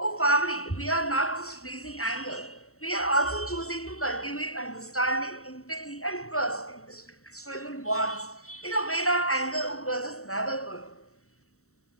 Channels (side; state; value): right; late; 0.64 ms